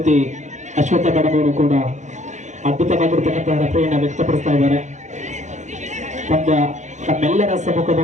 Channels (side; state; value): left; late; 0.35 ms